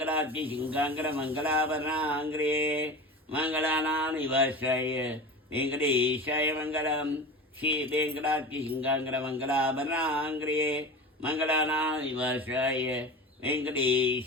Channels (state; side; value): normal; both; correlation 0.30